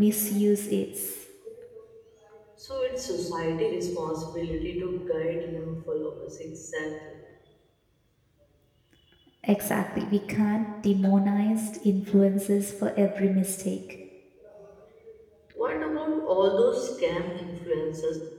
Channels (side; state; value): both; identical; correlation 1.00